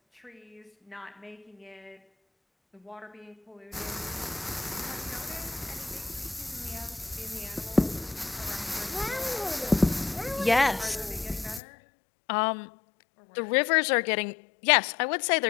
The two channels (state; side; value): drops out; right; at 11.6 s